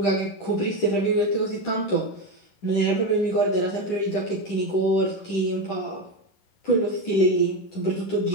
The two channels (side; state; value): right; late; 10 ms